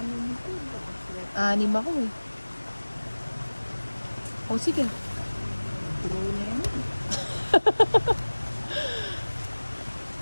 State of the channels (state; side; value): inverted; both; correlation -1.00